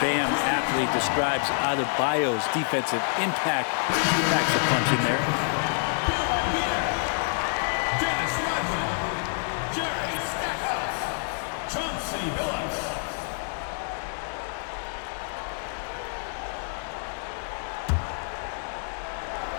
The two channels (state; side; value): silent; right; 60 dB below the other